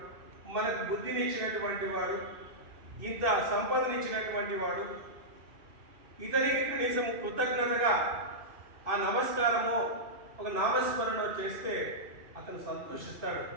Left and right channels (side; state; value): left; late; 2.6 ms